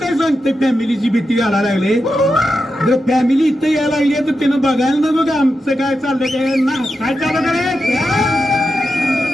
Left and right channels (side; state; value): both; normal; correlation 0.88